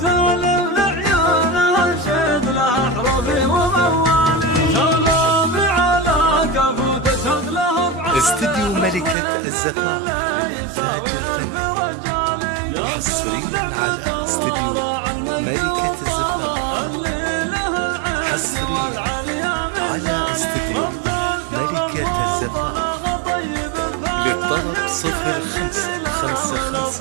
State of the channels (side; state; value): left; drops out; at 9.2 s